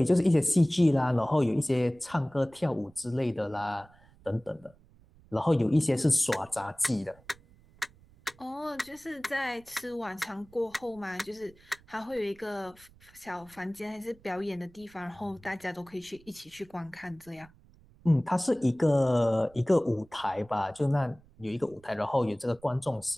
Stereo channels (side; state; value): right; noise; rumble, 27 dB below the sound